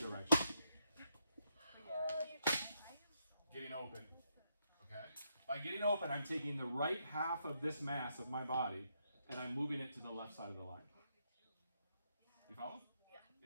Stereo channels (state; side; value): inverted; both; correlation -0.79